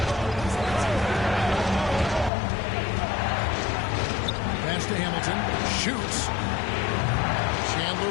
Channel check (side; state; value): right; drops out; at 2.3 s